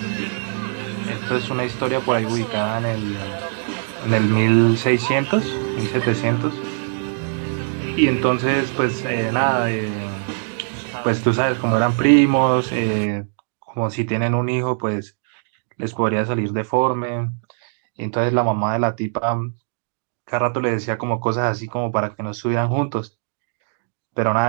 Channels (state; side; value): silent; left; digital silence